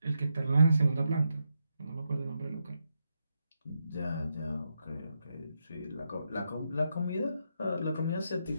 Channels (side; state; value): both; inverted; correlation -0.83